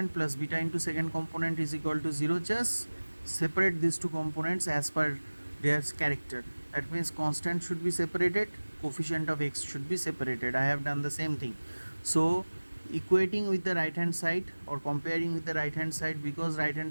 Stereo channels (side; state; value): both; inverted; correlation -1.00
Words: plus beta into second component is equal to 0. Just separate these two components as per their character. That means constant should be separated, coefficient of x should be separated. I have done the same thing. So equating with the right hand side or comparing with the right hand side, because right